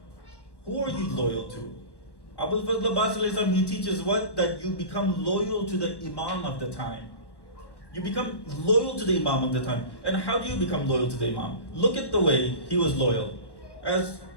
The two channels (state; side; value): late; right; 1.1 ms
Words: Who are you loyal to? Abul Fazl Abbas alayhi salam, he teaches what? That you become loyal to the Imam of the time. You become loyal to the Imam of the time. And how do you become loyal to the Imam? Look at the way he was loyal. As